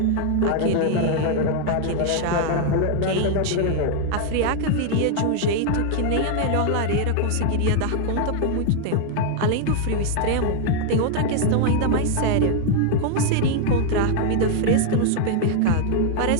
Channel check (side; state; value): both; different; correlation 0.00